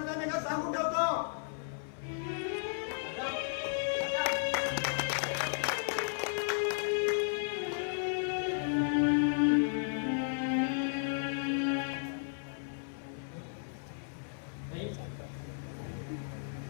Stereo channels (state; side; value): silent; right; 55 dB below the other